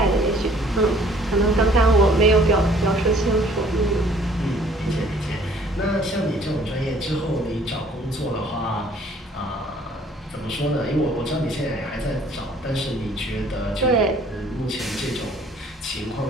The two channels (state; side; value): normal; both; correlation 0.57